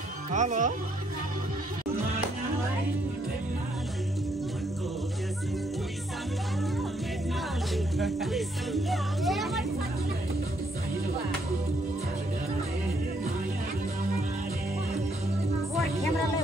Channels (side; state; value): both; normal; correlation 0.71